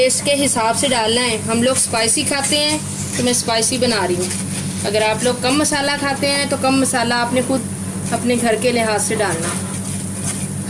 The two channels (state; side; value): identical; both; correlation 1.00